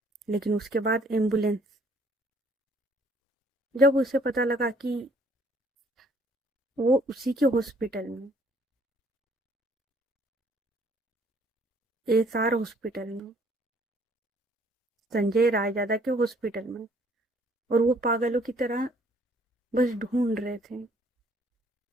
लेकिन उसके बाद एम्बुलेंस, जब उसे पता लगा कि वो उसी के हॉस्पिटल में, एसआर हॉस्पिटल में, संजय रायजादा के हॉस्पिटल में, और वो पागलों की तरह बस ढूंढ रहे थे।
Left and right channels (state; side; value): normal; both; correlation 0.61